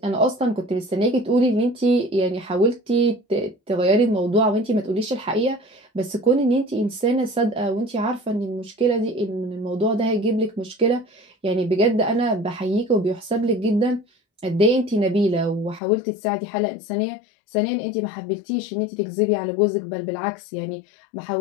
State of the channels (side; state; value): right; drops out; at 15.8 s